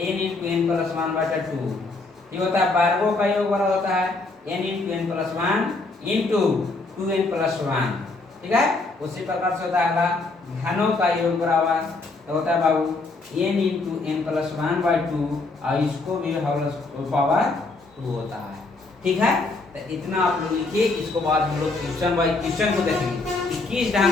× n + 1/2। ये होता है वर्गों का योग बराबर होता है n × n + 1 × 2n + 1, ठीक है। उसी प्रकार से होता है अगला घनों का योग बराबर तो होता है बाबू n × n + 1/2 और इसको भी होल पावर 2 होता है, ठीक है। तो इतना आप लोग लिखिए। इसको बाद हम लोग क्वेश्चन बाय क्वेश्चन को देखेंगे कि किस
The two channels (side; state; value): right; quieter; 3.4 dB